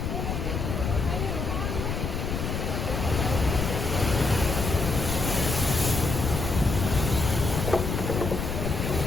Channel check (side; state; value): left; noise; rumble, 2 dB below the sound